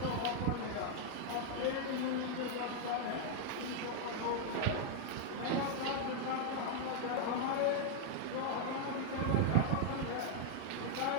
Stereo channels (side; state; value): both; different; correlation 0.00